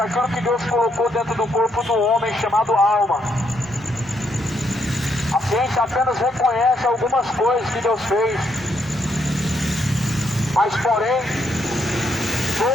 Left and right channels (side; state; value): both; normal; correlation 0.75